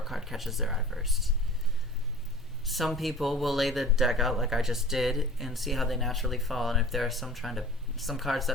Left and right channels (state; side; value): normal; both; correlation 0.41